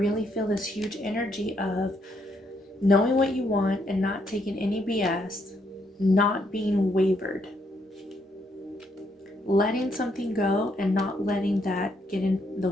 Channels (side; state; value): both; normal; correlation 0.74